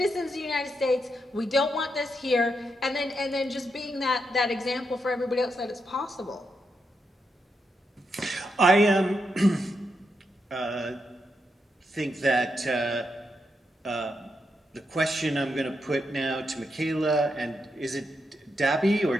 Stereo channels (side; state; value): both; normal; correlation 0.83